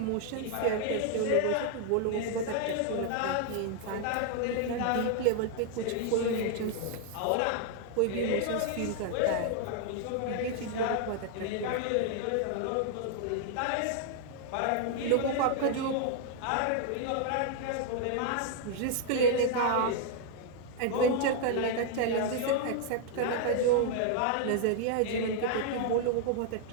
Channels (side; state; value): both; different; correlation 0.00